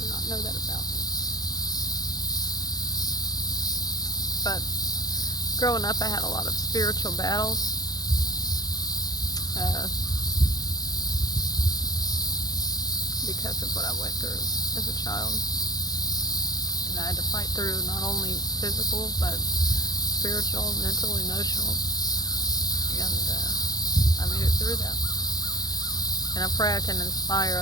not know that about me. But growing up, I had a lot of spiritual battles. Because of what I went through as a child. And I had to fight through not only physical, but spiritual, mental, emotional. And I made it through that. And I pray I can inspire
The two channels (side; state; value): right; late; 0.19 ms